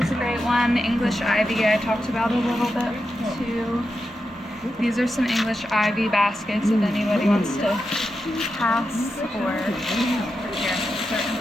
is a great one. English ivy I talked about a little bit too. These are some English ivy baskets if anybody wants to pass or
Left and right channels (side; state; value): both; normal; correlation 0.88